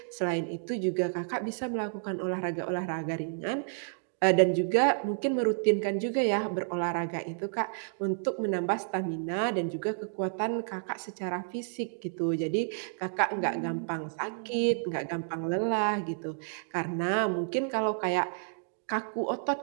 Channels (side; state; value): left; silent; digital silence